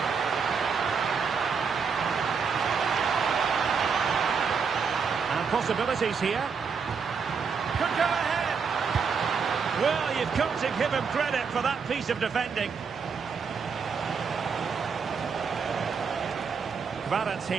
And possibilities here. Could go ahead. Well, you've got to give him credit for that piece of defending.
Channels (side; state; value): left; quieter; 5.8 dB